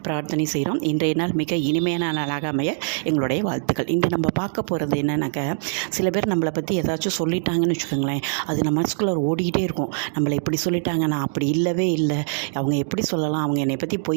பிரார்த்தனை செய்கிறோம். இன்றைய நாள் மிக இனிமையான நாளாக அமைய எங்களுடைய வாழ்த்துக்கள். இன்று நம்ம பார்க்க போகிறது என்னன்னாக்கா, சில பேர் நம்மளை பற்றி ஏதாச்சும் சொல்லிட்டாங்கன்னு வச்சுக்கோங்களேன், அது நம்ம மனசுக்குள்ளே ஓடிக்கிட்டே இருக்கும். நம்மளை இப்படி சொல்லிட்டாங்க, நான் அப்படி இல்லவே இல்லை, அவங்க எப்படி சொல்லலாம், அவங்க என்னை பற்றி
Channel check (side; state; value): left; silent; 63 dB below the other